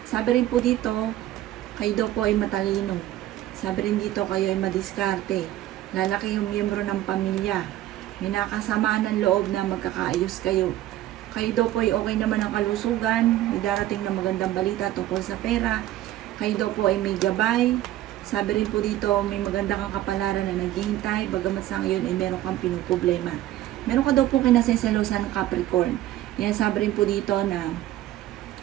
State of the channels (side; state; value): left; quieter; 14.1 dB